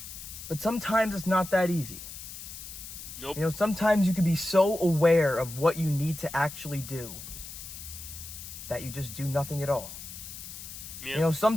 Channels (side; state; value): left; noise; hiss, 11 dB below the sound